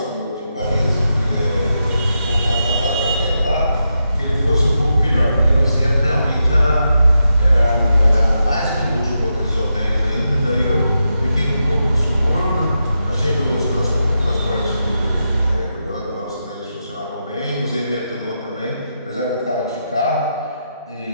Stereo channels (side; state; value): both; inverted; correlation -0.86